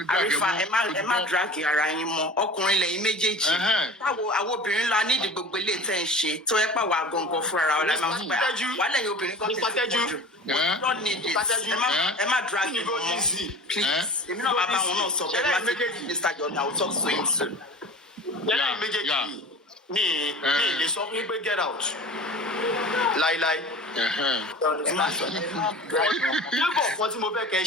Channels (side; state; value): both; normal; correlation 0.38